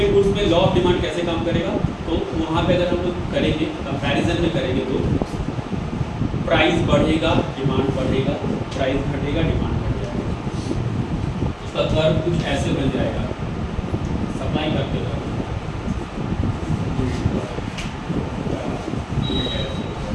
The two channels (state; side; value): identical; both; correlation 1.00